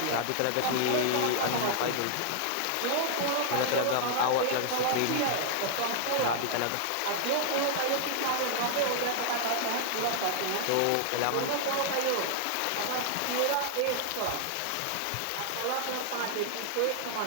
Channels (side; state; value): both; different; correlation -0.01